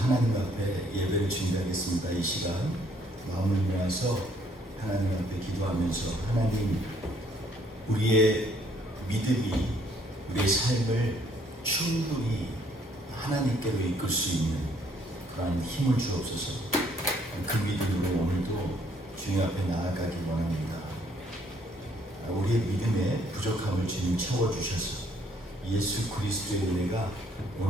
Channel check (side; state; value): both; normal; correlation 0.65